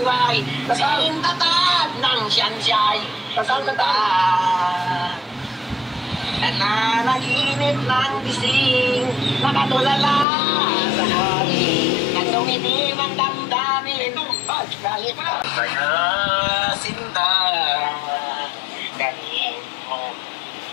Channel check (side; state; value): right; drops out; at 10.2 s